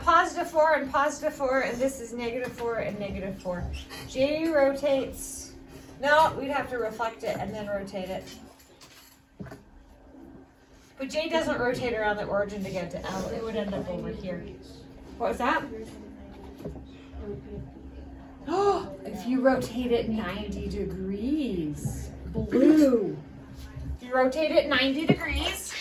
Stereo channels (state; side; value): identical; both; correlation 1.00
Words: +4 and +4, and this is -4 and -4. J rotates, no, we'd have to reflect it and then rotate it. But J doesn't rotate around the origin to get to L. It would end up over here. What was that? Oh, if you rotate it 90 degrees. Blue. If you rotate it 90 degrees.